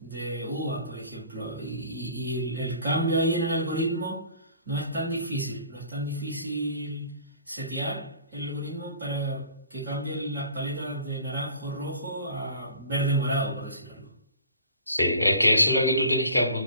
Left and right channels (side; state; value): both; inverted; correlation -0.49